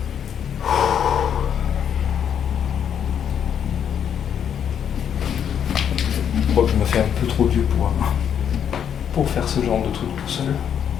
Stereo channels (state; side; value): quieter; right; 8.5 dB